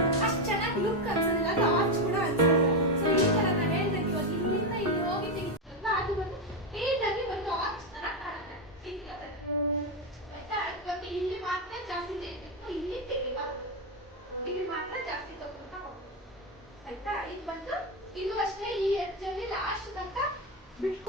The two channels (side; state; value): both; normal; correlation 0.09